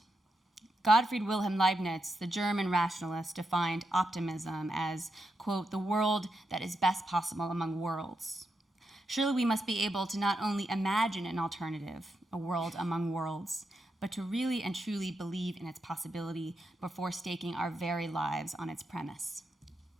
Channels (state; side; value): normal; both; correlation 0.85